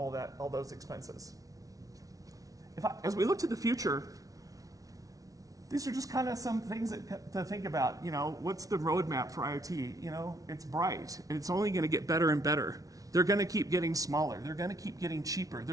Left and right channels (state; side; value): late; left; 0.18 ms